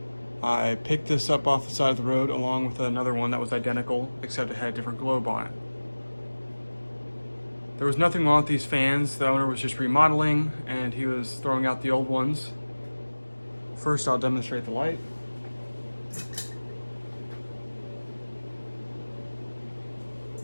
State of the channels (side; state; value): both; inverted; correlation -1.00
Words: I picked this up off the side of the road along with another one that was identical, except it had a different globe on it. There was nothing wrong with these fans. The owner was just remodeling and he was throwing out the old ones. First I'll demonstrate the light.